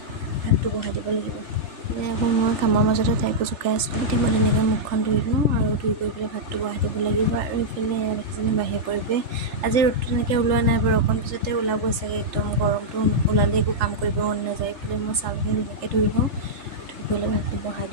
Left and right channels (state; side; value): late; left; 3.4 ms